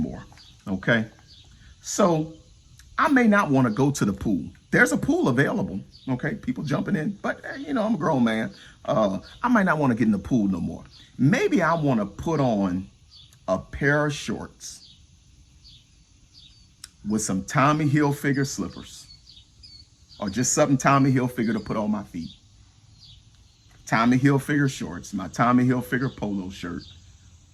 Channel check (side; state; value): both; identical; correlation 1.00